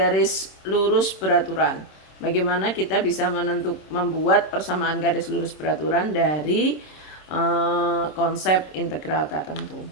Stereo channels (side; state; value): right; late; 26 ms